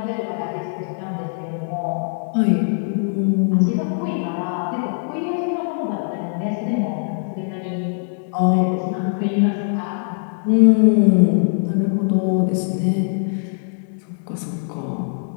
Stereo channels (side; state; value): right; silent; digital silence